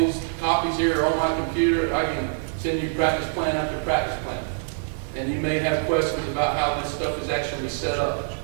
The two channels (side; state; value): left; silent; digital silence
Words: copies here on my computer. I can send you practice plan after practice plan. And you may have questions about how this stuff is actually set up.